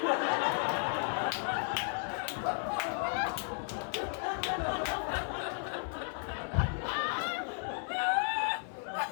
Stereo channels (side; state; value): right; silent; 55 dB below the other